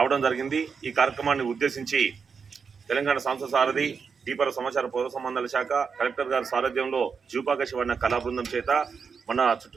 జరిగింది. ఈ కార్యక్రమాన్ని ఉద్దేశించి తెలంగాణ సంస్థ సారథి దీపర సమాచార పౌర సంబంధాల శాఖ కలెక్టర్ గారి సారథ్యంలో జూపాక శివన్న కళా బృందం చేత మన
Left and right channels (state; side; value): quieter; left; 5.8 dB